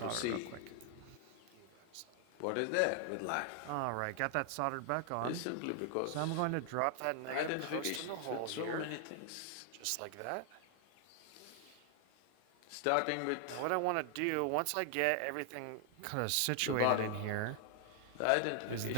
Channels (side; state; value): both; different; correlation 0.00